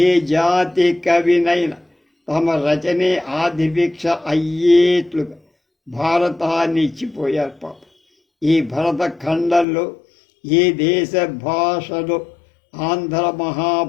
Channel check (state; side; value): drops out; right; at 9.7 s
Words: జాతి కవినైనా తమ రచనే ఆదిభిక్ష అయ్యేట్లుగా భారతాన్ని ఇచ్చిపోయారు పాప. ఈ భరత ఖండంలో ఏ దేశ భాషలో ఆంధ్ర